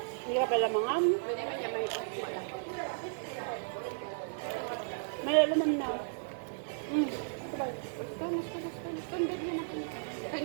Hindi ka pala mangam. Pwede man niya may wala. May laman na. Sabay. Basta. Tundod mo na kanya.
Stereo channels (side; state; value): left; silent; digital silence